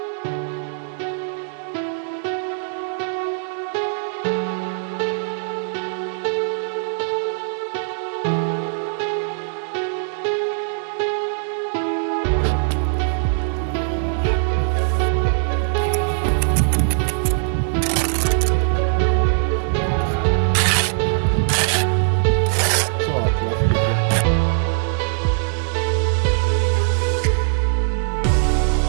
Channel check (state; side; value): silent; left; digital silence